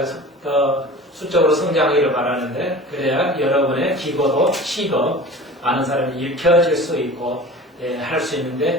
더 수적으로 성장하기를 바라는데 그래야 여러분의 기고도 시도 많은 사람이 읽혀질 수 있고 할 수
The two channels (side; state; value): both; normal; correlation 0.39